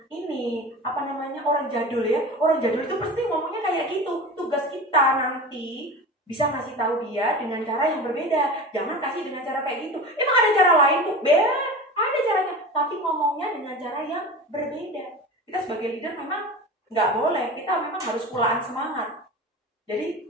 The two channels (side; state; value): both; normal; correlation 0.32